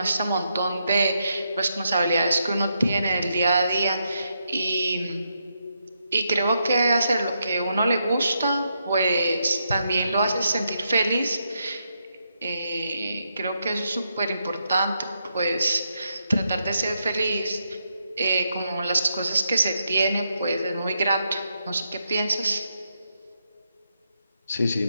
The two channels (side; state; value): both; inverted; correlation -0.81